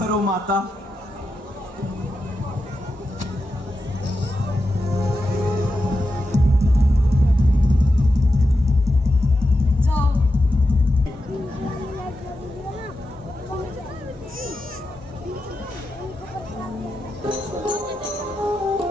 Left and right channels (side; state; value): both; normal; correlation 0.89